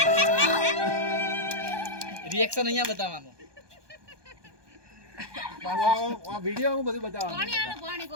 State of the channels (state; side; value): late; left; 1.2 ms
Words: રિએક્શન અહીંયા બતાવવાનું. આ વિડિયો હું બધું બતાવવાનું.